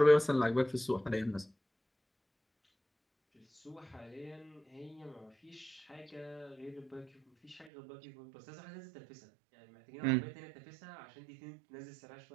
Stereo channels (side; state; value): left; drops out; at 7.7 s